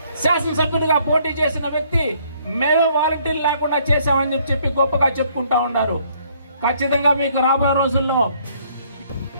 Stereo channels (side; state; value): both; inverted; correlation -0.64